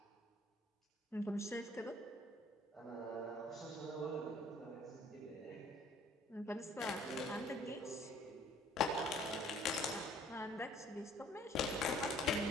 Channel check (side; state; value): both; normal; correlation 0.57